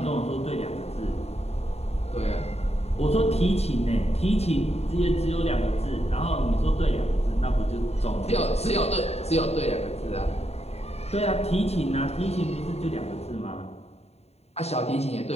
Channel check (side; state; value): right; late; 0.30 ms